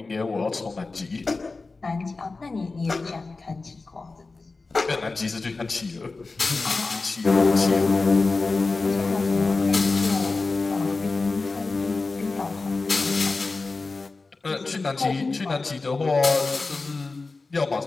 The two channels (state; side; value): quieter; right; 3.8 dB